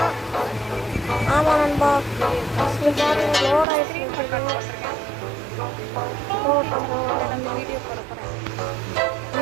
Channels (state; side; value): drops out; left; at 3.7 s